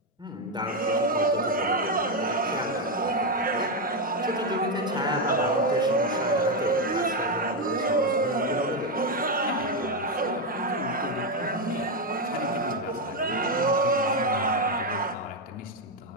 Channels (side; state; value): both; normal; correlation 0.06